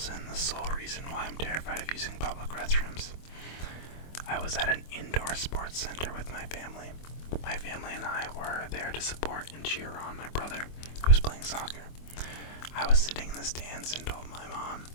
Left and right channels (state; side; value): late; right; 24 ms